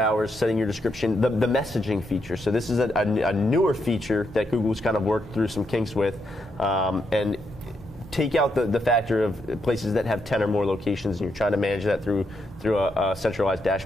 setting your description, the messaging feature. So this is a newer feature that Google's kind of worked through some kinks with, and take out the factor of places that have 10 or more locations, and you're trying to manage that through a centralized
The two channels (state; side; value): normal; both; correlation 0.80